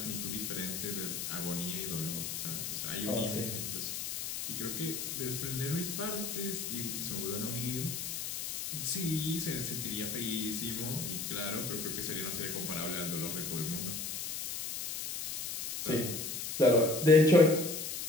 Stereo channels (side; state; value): left; noise; hiss, 4 dB below the sound